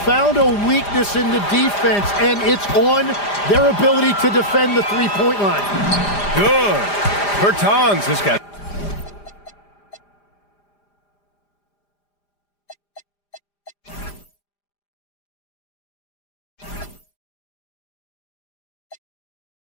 a weakness in the defense, and it's on their ability to defend the three-point line. Good. Bertans has got.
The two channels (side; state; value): right; late; 5.0 ms